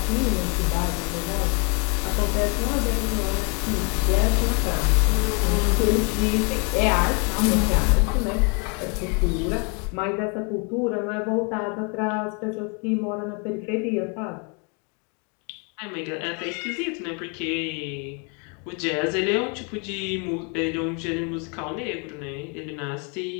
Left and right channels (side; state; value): right; quieter; 35.4 dB